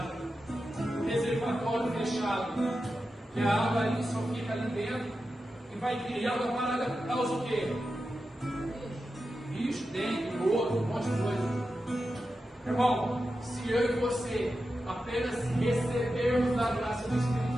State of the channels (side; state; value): both; normal; correlation 0.91